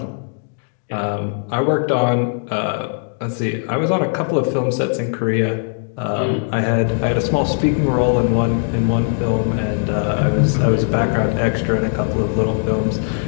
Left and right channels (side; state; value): right; silent; digital silence